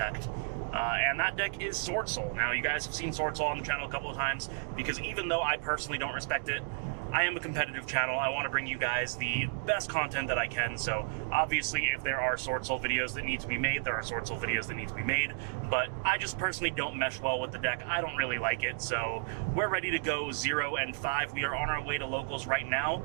And that deck is Swordsoul. Now, you guys have seen Swordsoul on the channel a couple of times, because even though I personally don't respect it, I am a competitive channel. I want to bring you guys the best content that I can, so obviously if there are Swordsoul videos that need to be made, there are Swordsoul videos that need to be made, but I just personally don't mesh well with the deck. I don't really like it, so we're ready to go 0-5. We are on our way to locals right now.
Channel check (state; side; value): silent; left; digital silence